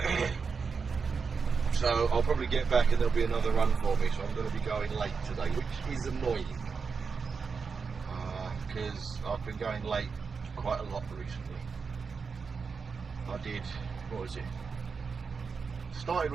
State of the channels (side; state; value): left; quieter; 5.3 dB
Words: So I'll probably get back and there'll be another run for me, so I'm going to be going late today, which is annoying. Because I've been going late quite a lot recently. I did, what was it? Started